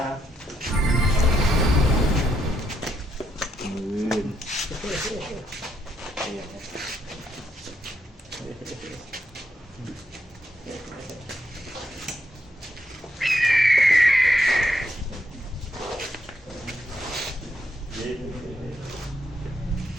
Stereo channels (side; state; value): both; normal; correlation 0.78